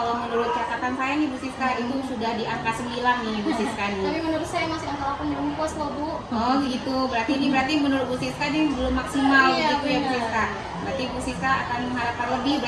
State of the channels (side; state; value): both; identical; correlation 1.00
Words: menurut catatan saya nih Bu Siska itu sudah di angka 9 nih Bu Siska nih. Tapi menurut saya masih angka 8 belum puas loh Bu. Oh gitu, berarti menurut Bu Siska ini belum maksimal Iya, gitu ya Bu benar. Siska. Berarti Bu Siska akan mengharapkan lebih